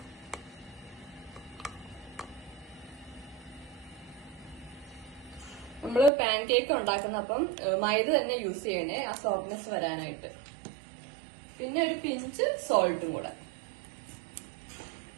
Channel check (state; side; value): drops out; left; at 6.1 s